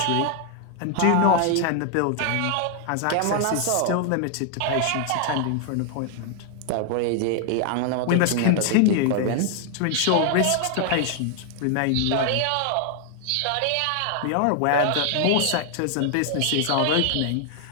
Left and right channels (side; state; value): both; different; correlation 0.00